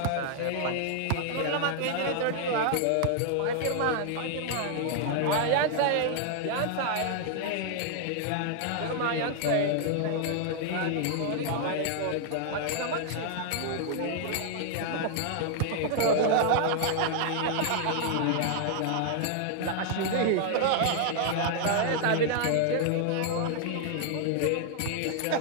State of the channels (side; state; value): both; different; correlation 0.00